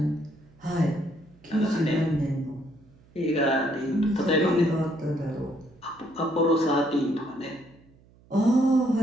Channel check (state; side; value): noise; right; hum, 28 dB below the sound